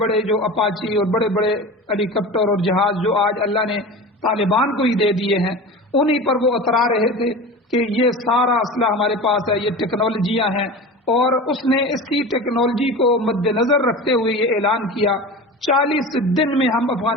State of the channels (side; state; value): both; normal; correlation 0.32